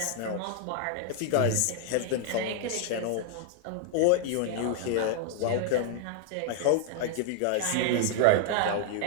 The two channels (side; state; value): both; different; correlation 0.00